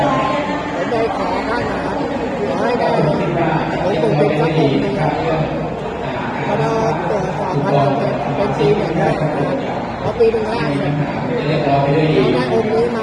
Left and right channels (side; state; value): both; identical; correlation 1.00